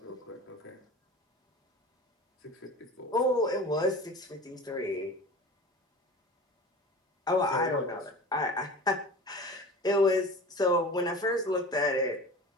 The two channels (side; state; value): both; normal; correlation 0.36